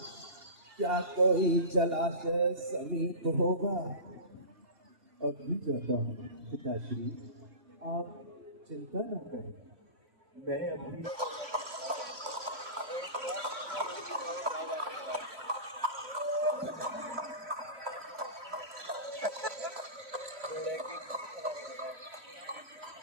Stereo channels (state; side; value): late; left; 3.0 ms